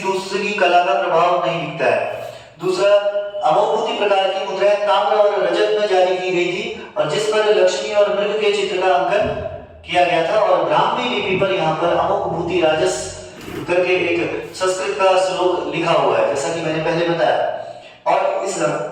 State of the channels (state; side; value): identical; both; correlation 1.00